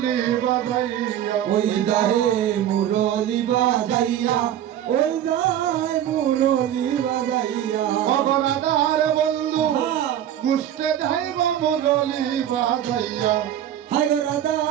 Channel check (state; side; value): quieter; left; 10.9 dB